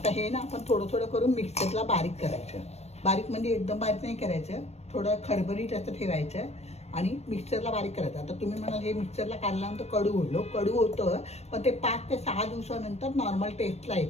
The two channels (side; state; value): right; late; 0.31 ms